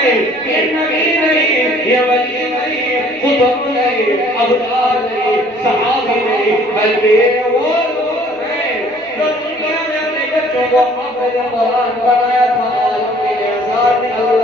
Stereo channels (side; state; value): right; noise; hum, 29 dB below the sound